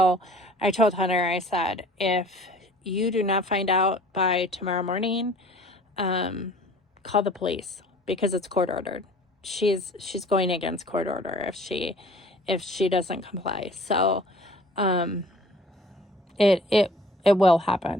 I told Hunter, I said, if you do not find out by tomorrow morning, call the police, because it's court ordered. She's going against court order if she doesn't comply. So it will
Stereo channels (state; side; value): normal; both; correlation 0.50